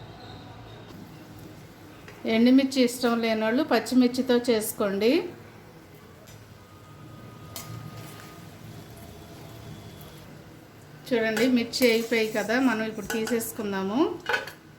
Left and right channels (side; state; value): both; identical; correlation 1.00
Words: ఎండుమిర్చి ఇష్టం లేని వాళ్ళు పచ్చిమిర్చితో చేసుకోండి. చూడండి, మిర్చి అయిపోయాయి కదా, మనం ఇప్పుడు తీసేసుకుందాము.